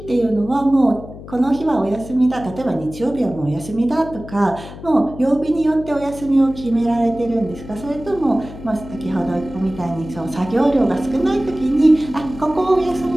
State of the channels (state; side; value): noise; left; hum, 14 dB below the sound